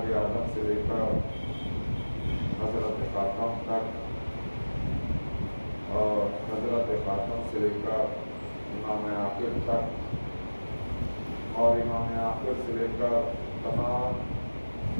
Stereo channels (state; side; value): inverted; both; correlation -1.00